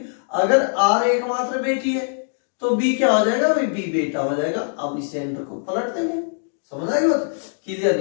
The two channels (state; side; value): silent; right; digital silence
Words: अगर आर एकमात्र बेटी है तो बी क्या हो जाएगा भाई, बी बेटा हो जाएगा। अब इस सेंटर को पलट देंगे, समझ आई बात, क्लियर